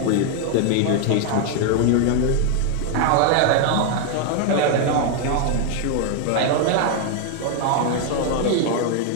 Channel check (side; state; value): both; different; correlation 0.01